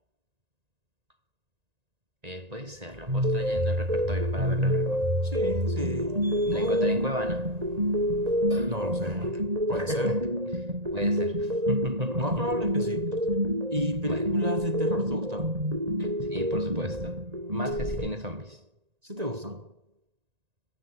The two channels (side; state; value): left; late; 1.9 ms